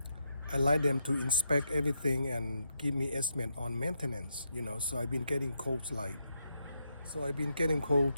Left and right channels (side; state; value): both; inverted; correlation -0.81